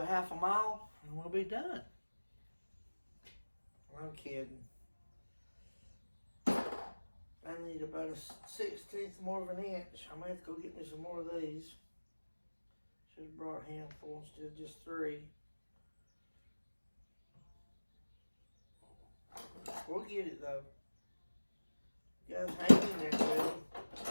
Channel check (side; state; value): both; inverted; correlation -1.00